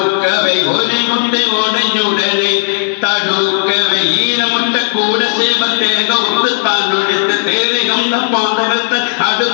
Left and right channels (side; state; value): right; silent; digital silence